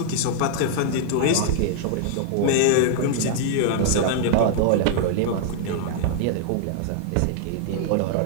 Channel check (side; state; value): both; different; correlation -0.01